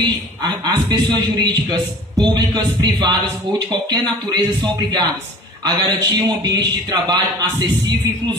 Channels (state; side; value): normal; both; correlation 0.44